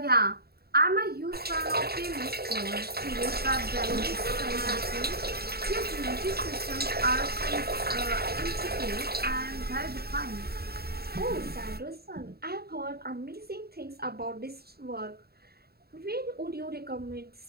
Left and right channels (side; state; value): left; late; 0.46 ms